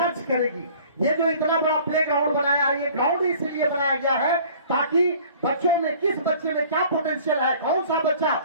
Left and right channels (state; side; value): inverted; both; correlation -0.50